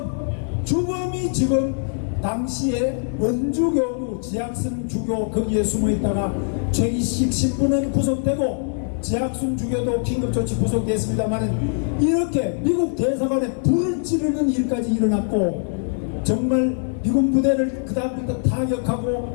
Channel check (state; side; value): silent; right; 64 dB below the other